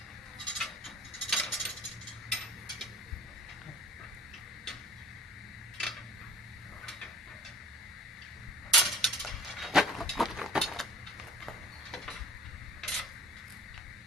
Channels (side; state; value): both; normal; correlation 0.47